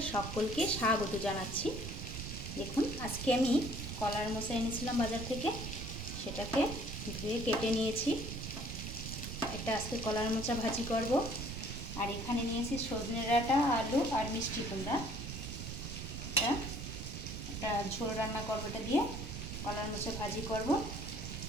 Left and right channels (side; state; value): right; noise; rumble, 7 dB below the sound